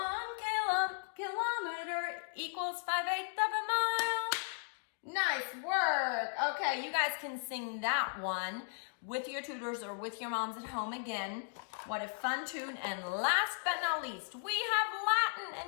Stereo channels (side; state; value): right; silent; digital silence